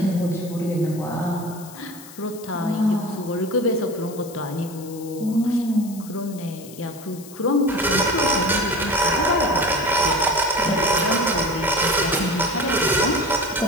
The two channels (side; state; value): left; noise; hiss, 18 dB below the sound